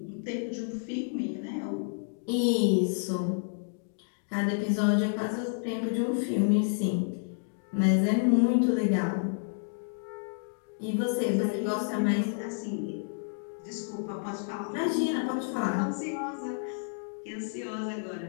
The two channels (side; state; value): right; silent; digital silence